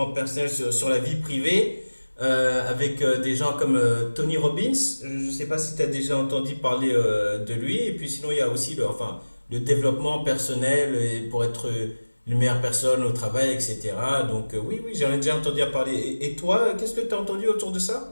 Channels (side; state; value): both; inverted; correlation -1.00